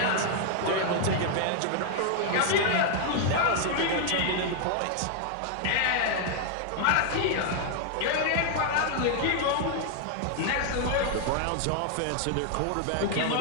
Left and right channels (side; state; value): both; different; correlation 0.00